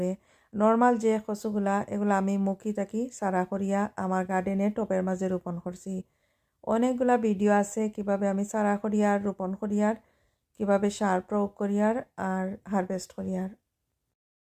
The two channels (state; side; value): identical; both; correlation 1.00